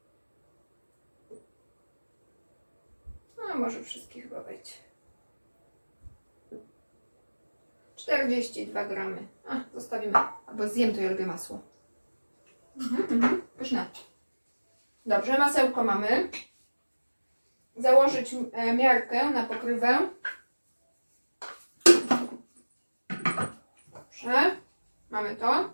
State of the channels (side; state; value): both; inverted; correlation -1.00